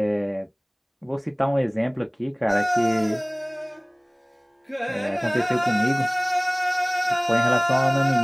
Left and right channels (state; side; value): identical; both; correlation 1.00